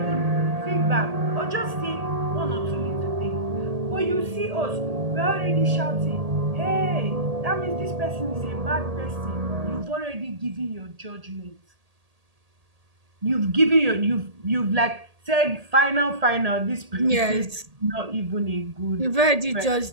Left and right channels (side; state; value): left; late; 1.8 ms